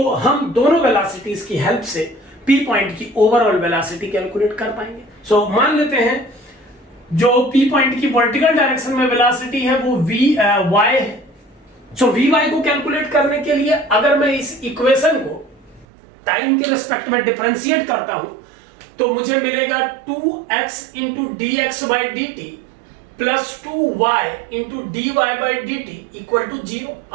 हम दोनों वेलोसिटीज की हेल्प से p पॉइंट की ओवरऑल वेलोसिटी कैलकुलेट कर पाएंगे। सो मान लेते हैं जो p पॉइंट की वर्टिकल डायरेक्शन में वेलोसिटी है वो y है। सो vy को कैलकुलेट करने के लिए अगर मैं इस इक्वेशन को टाइम के रिस्पेक्ट में डिफरेंशिएट करता हूं तो मुझे मिलेगा 2x into dx by D T plus 2y into dy by D T equal to 0।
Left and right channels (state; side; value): drops out; left; at 15.9 s